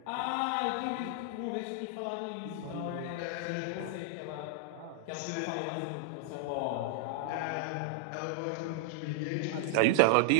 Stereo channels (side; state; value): both; different; correlation -0.01